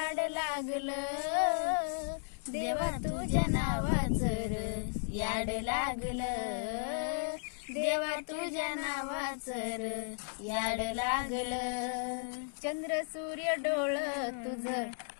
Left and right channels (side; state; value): right; silent; digital silence